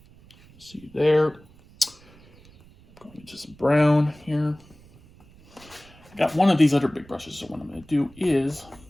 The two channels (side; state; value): right; noise; rumble, 25 dB below the sound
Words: See there. Going into some brown here. got one of these other big brushes, so what I'm going to do is